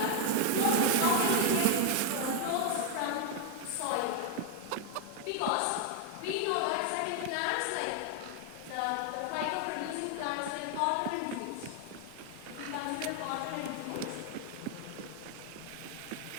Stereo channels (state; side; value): different; both; correlation 0.00